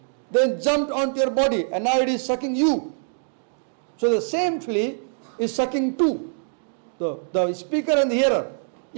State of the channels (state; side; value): silent; left; digital silence